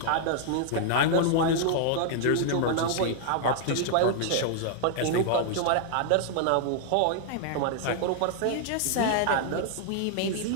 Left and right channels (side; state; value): both; different; correlation 0.00